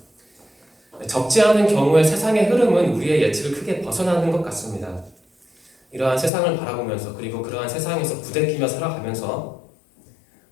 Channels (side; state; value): right; drops out; at 6.3 s